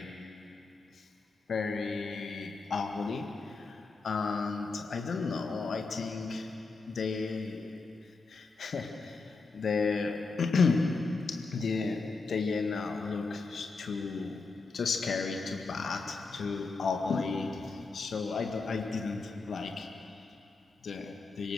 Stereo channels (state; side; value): quieter; right; 4.1 dB